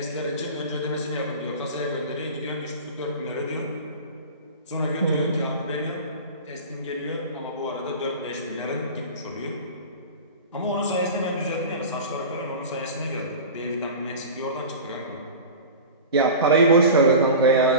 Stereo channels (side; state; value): both; inverted; correlation -0.33